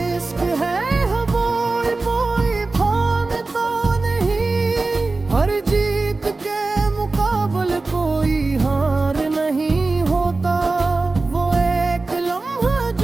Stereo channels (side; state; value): left; quieter; 3.5 dB